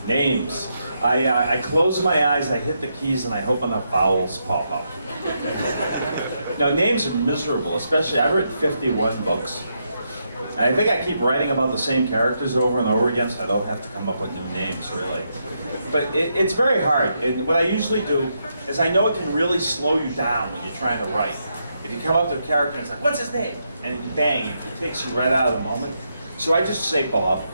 Names. I close my eyes, I hit the keys, and I hope enough vowels pop up. Now, names are miserable, especially I've written 51 books. And I think I keep writing about the same characters over and over again, so I don't have to come up with new names, really. But it's very hard, and what I usually do is I know it can really slow you down when you're trying to write. If you come up to a character and it's like, what's his name? And bang, it takes you right out of the moment. So I just say Bob,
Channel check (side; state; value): both; inverted; correlation -0.81